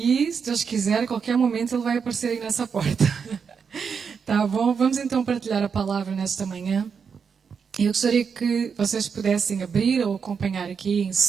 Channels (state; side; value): quieter; left; 6.2 dB